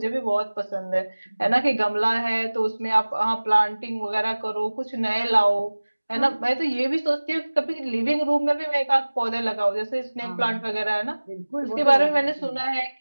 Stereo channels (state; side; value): inverted; both; correlation -1.00